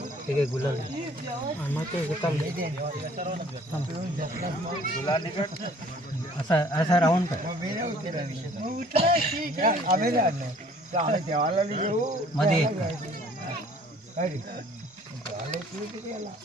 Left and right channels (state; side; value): normal; both; correlation 0.55